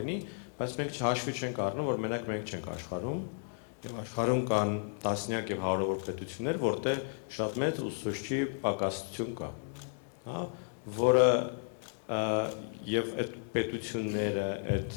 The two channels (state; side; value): silent; right; digital silence